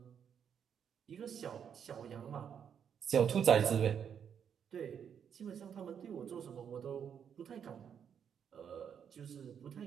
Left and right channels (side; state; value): left; quieter; 8.0 dB